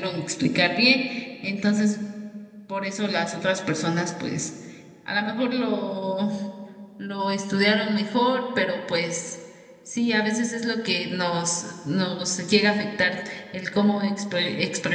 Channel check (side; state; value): both; identical; correlation 1.00